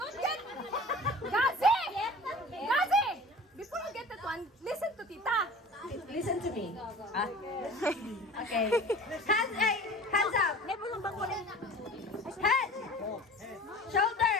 get... Gazi! Gazi! Before you get that one, listen to Tita. Listen to me. Okay. Hands up. Head. Shoulder.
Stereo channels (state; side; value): normal; both; correlation 0.41